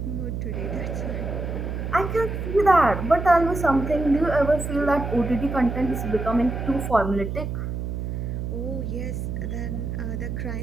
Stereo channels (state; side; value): noise; right; hum, 4 dB below the sound